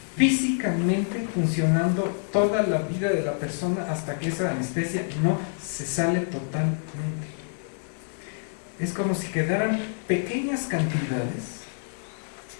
físicamente funcionando toda la vida de la persona hasta que esa anestesia no se sale totalmente. Es como si quedaran pequeñas cantidades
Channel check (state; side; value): silent; right; 60 dB below the other